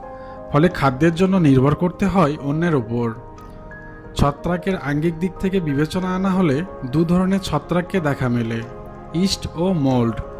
ফলে খাদ্যের জন্য নির্ভর করতে হয় অন্যের উপর। ছত্রাকের আঙ্গিক দিক থেকে বিবেচনা আনা হলে দু ধরনের ছত্রাককে দেখা মেলে, ইস্ট ও মোল্ড।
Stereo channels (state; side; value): identical; both; correlation 1.00